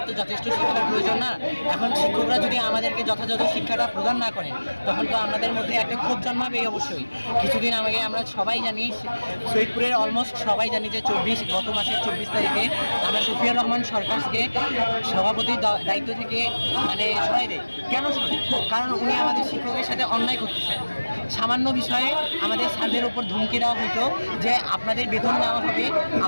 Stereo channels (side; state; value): both; inverted; correlation -1.00